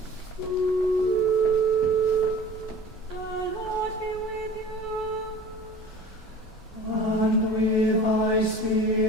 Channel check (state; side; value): normal; both; correlation 0.42